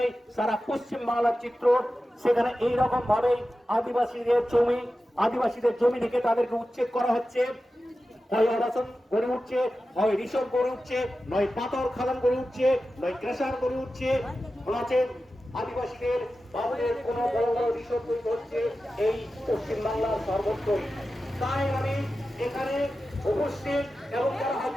সারা পশ্চিম বাংলার চিত্র। সেখানে এইরকম ভাবে আদিবাসীদের জমি থেকে তাদেরকে উচ্ছেদ করা হচ্ছে। হয় আবাসন গড়ে উঠছে, হয় রিসোর্ট গড়ে উঠছে, নয় পাথর খাদান গড়ে উঠছে, নয় ক্রেশার গড়ে উঠছে। আদিবাসীদের বাবুদের কোন বড় বড় রিসোর্ট তৈরি হচ্ছে এই পশ্চিম বাংলার সর্বত্রই। তাই আমি এখানে উপস্থিত এবং যারা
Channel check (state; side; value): normal; both; correlation 0.93